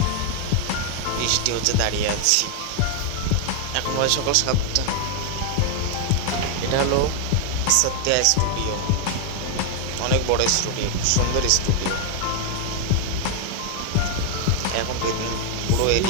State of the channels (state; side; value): different; both; correlation 0.00